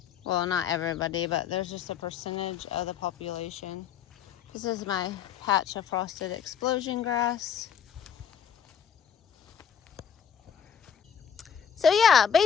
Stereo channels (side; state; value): right; quieter; 7.8 dB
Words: Well, not everybody, but there's just a percentage of the population. This is my patch of frosted explosion grass. So yeah,